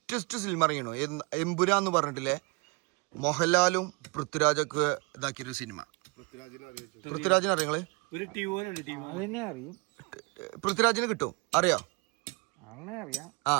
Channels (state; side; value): quieter; left; 29.5 dB